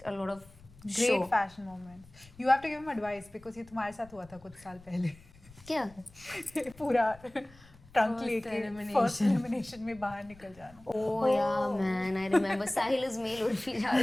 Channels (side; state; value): left; noise; rumble, 24 dB below the sound